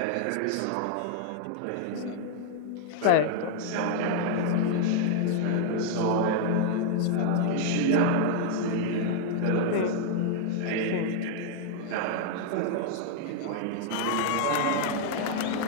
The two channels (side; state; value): both; different; correlation 0.00